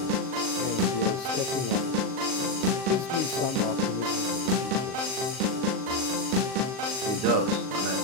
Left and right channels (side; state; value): left; late; 38 ms